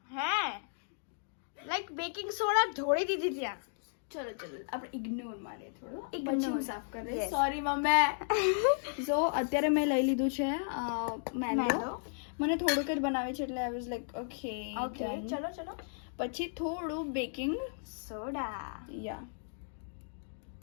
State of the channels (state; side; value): silent; right; digital silence